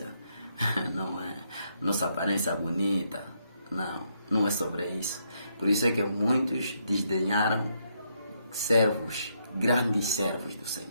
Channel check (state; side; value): inverted; both; correlation -0.76